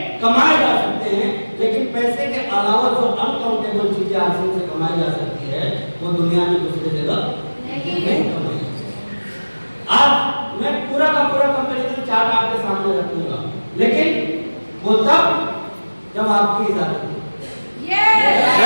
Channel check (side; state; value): both; inverted; correlation -1.00